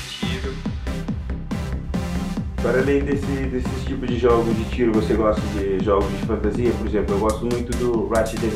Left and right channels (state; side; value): identical; both; correlation 1.00